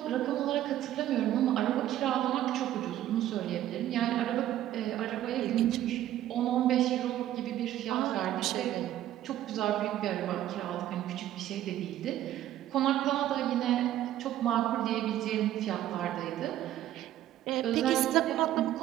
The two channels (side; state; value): left; quieter; 12.8 dB